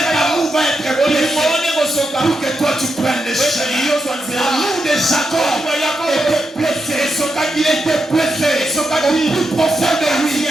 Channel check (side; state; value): both; normal; correlation 0.85